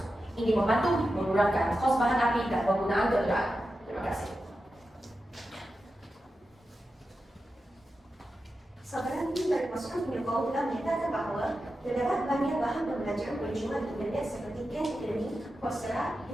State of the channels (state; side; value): normal; both; correlation 0.91